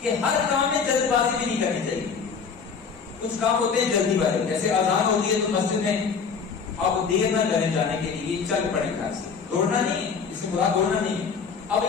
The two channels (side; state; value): right; quieter; 5.8 dB